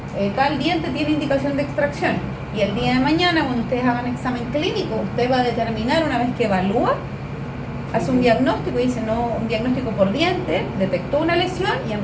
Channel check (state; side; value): identical; both; correlation 1.00